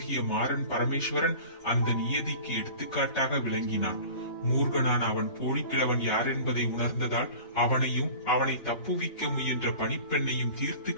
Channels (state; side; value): late; right; 3.3 ms